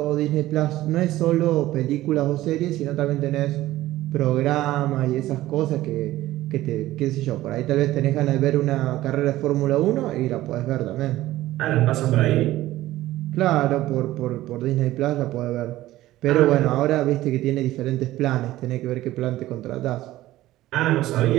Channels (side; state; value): left; quieter; 15.8 dB